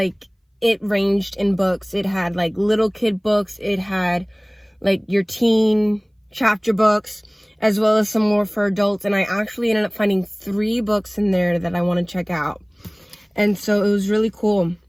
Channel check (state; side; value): identical; both; correlation 1.00